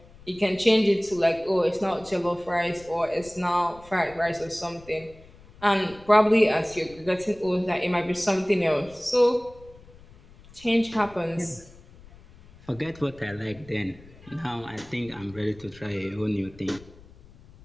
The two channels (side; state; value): left; noise; rumble, 23 dB below the sound